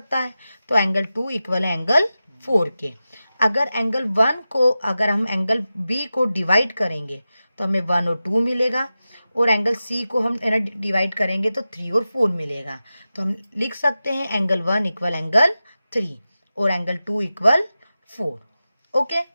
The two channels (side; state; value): both; inverted; correlation -0.93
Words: है. तो एंगल 2 इक्वल है एंगल 4 के. अगर एंगल 1 को अगर हम एंगल B को डिवाइड करेंगे तो हमें 1 और 2 मिलेगा और एंगल C को हम डिवाइड करेंगे तो 3 और 4 मिलेगा. तो हम लिख सकते हैं एंगल 1 इक्वल एंगल 3 और एंगल 2 इक्वल 4. ओके.